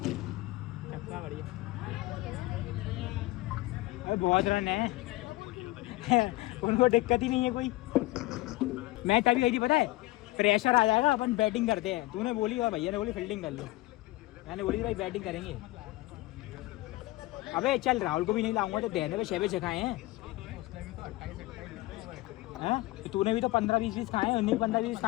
छक्का बढ़िया। अरे बहुत रन है। उनको दिक्कत ही नहीं है कोई। मैच अभी गई थी पता है, प्रेशर आ जाएगा अपन बैटिंग करते हैं। तूने बोली और भैया ने बोली फील्डिंग कर लो, मैंने बोली भाई बैटिंग करेंगे। अबे चल राहुल को भी नहीं लाऊंगा तो देने पे 6 खाए हैं। हाँ? तो तूने भी तो 15-20 खाए हैं। 19-15-20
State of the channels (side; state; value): right; quieter; 19.5 dB